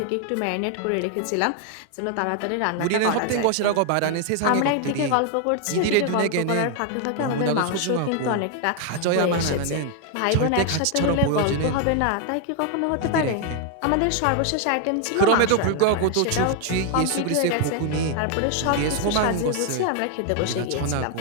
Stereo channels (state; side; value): different; both; correlation 0.00